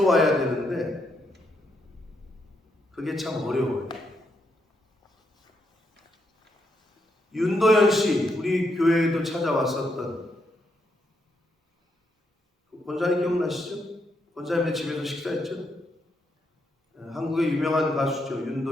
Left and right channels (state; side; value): normal; both; correlation 0.79